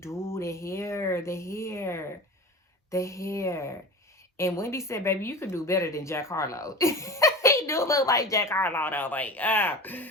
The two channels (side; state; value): both; normal; correlation 0.32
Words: The hair. And Wendy said, baby, you could do better than Jack Harlow. He do look like Jack Harlow, though. Like,